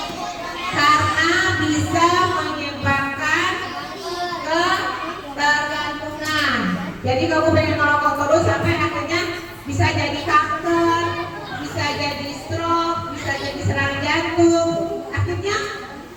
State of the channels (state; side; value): identical; both; correlation 1.00